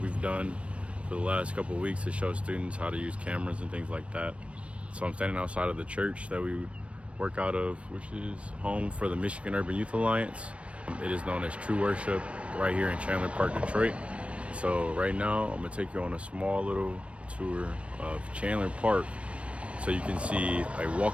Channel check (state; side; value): late; left; 0.062 ms